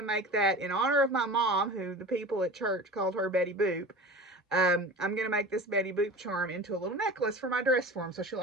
make that in honor of my mom, who the people at church called her Betty Boop. I'm going to make this Betty Boop charm into a little necklace for my dress form, so she'll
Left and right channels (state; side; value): normal; both; correlation 0.35